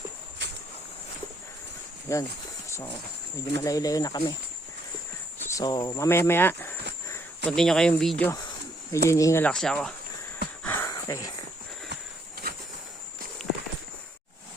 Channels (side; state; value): both; normal; correlation 0.69